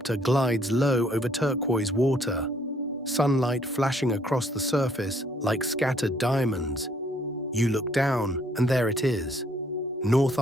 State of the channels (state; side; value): normal; both; correlation 0.65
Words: glides low over turquoise water, sunlight flashing across the surface like scattered diamonds. You look down, and there it is. North